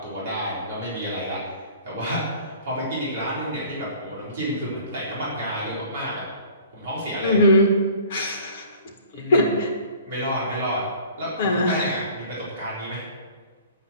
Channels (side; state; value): both; inverted; correlation -0.48